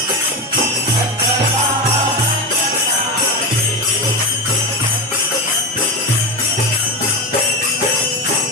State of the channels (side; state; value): both; normal; correlation 0.17